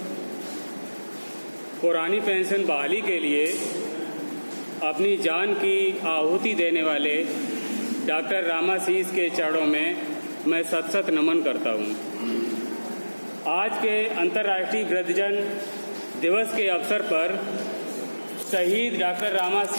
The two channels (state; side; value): inverted; both; correlation -1.00